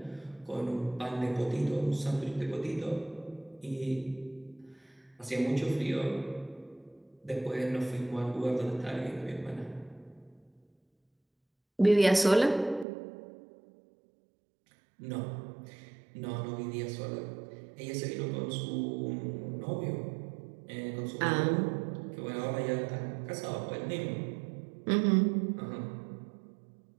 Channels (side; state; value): left; drops out; at 12.9 s